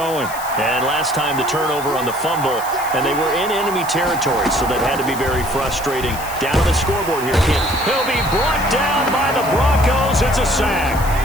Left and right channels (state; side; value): noise; left; hiss, 13 dB below the sound